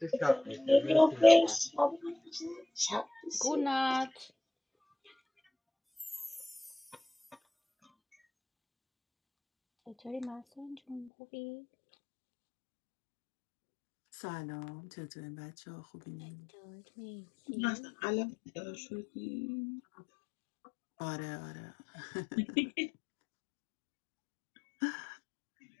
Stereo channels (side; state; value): right; drops out; at 11.1 s